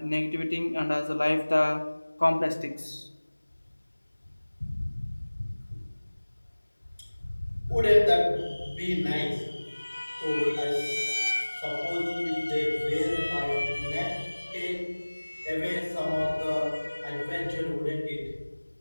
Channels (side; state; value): both; inverted; correlation -1.00